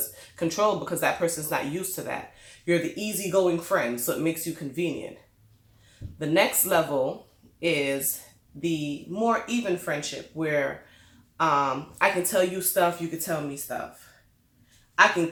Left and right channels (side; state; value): both; identical; correlation 1.00